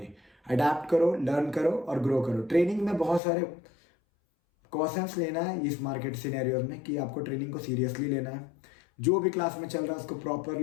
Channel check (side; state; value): right; drops out; at 3.2 s